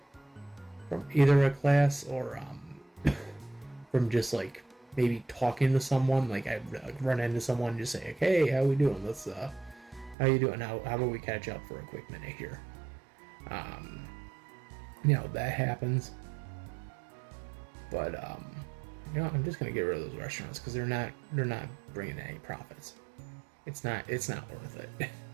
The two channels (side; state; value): left; drops out; at 10.2 s